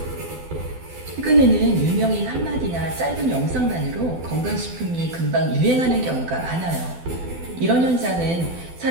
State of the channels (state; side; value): late; left; 12 ms